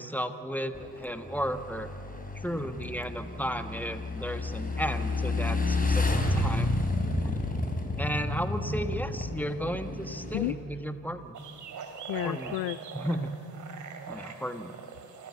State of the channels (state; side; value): normal; both; correlation 0.72